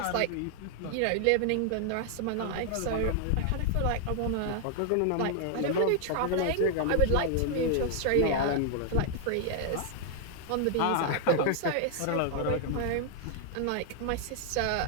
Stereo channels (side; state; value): both; different; correlation 0.00